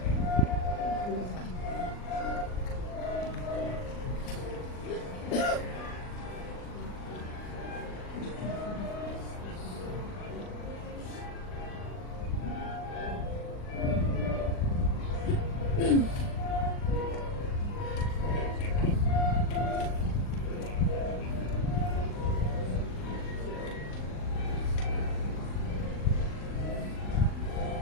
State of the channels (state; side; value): late; right; 39 ms